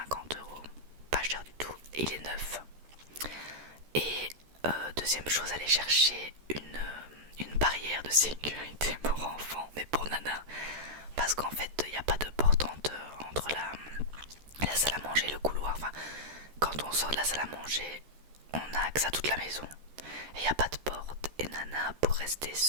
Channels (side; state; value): left; late; 13 ms